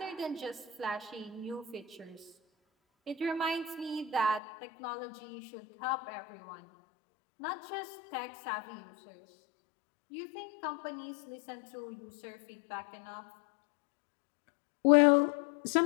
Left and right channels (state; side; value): drops out; right; at 4.4 s